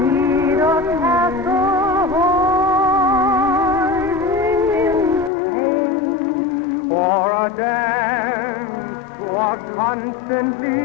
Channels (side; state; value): right; drops out; at 5.3 s